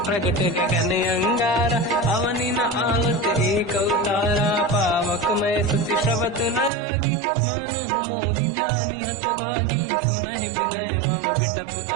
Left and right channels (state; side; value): drops out; left; at 6.7 s